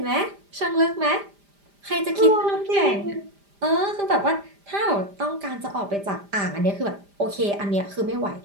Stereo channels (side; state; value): left; late; 5.0 ms